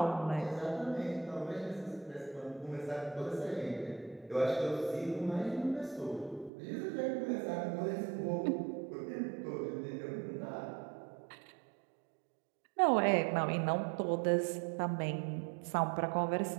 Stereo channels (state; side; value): drops out; left; at 6.5 s